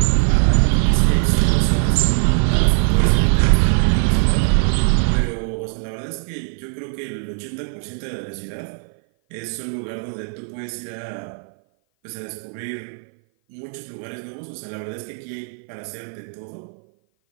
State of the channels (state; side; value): silent; left; 57 dB below the other